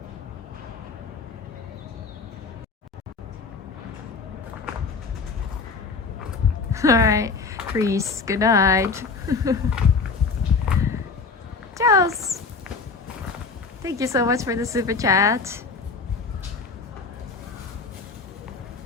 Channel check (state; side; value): quieter; right; 4.7 dB